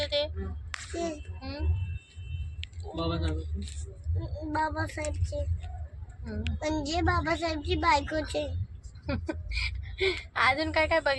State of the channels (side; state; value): both; identical; correlation 1.00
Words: ते? बाबासाहेबचे म्हणजे बाबासाहेबची बायकोचे. अजून काय काय